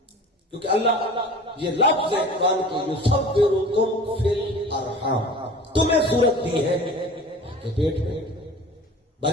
کیونکہ اللہ یہ لفظ ہے قرآن کے، یصورکم فی الارحام، تمہیں صورت دی ہے ماں کے پیٹ میں۔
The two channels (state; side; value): normal; both; correlation 0.41